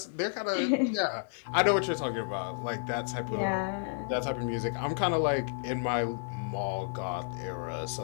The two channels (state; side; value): silent; right; digital silence